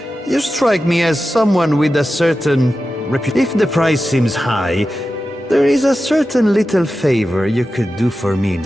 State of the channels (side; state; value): both; normal; correlation 0.92